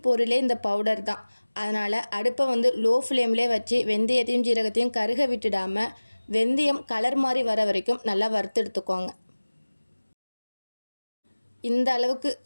பொருளே இந்த பவுடர் தான். அதனால் அடுப்பை லோ ஃப்ளேம்லேயே வச்சு வெந்தயத்தையும் ஜீரகத்தையும் கருக விட்டுடாமல் வெந்தயம் கலர் மாதிரி வர வரைக்கும் நல்லா வறுத்து எடுத்துக்கோங்க. இந்த அளவுக்கு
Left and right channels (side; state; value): both; inverted; correlation -1.00